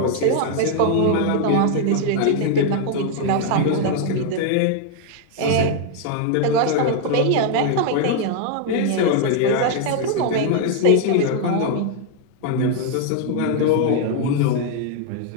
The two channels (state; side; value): different; both; correlation 0.00